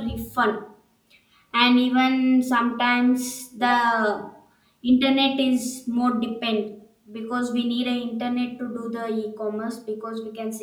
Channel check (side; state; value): both; identical; correlation 1.00